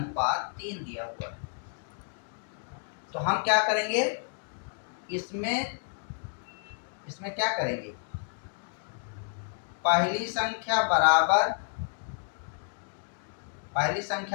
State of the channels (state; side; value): silent; right; 57 dB below the other